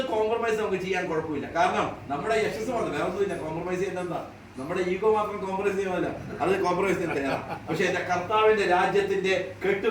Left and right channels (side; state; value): both; identical; correlation 1.00